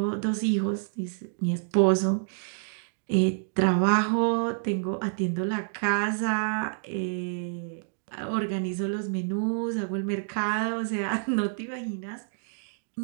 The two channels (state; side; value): silent; left; digital silence